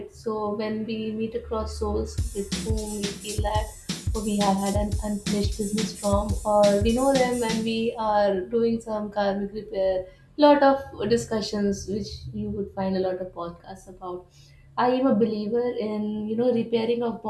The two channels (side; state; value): both; identical; correlation 1.00